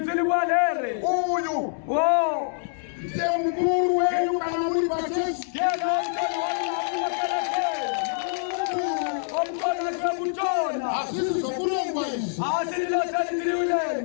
uyu ndiye mukuru wenyu kana muri pachechi omkona kutona asisi sokulongwa izi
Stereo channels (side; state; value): right; silent; 61 dB below the other